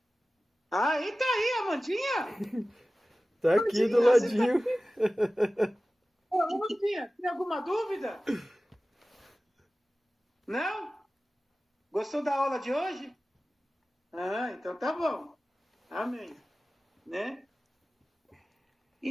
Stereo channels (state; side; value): normal; both; correlation 0.96